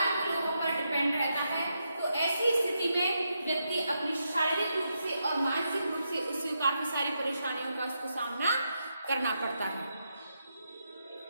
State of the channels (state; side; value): inverted; both; correlation -0.83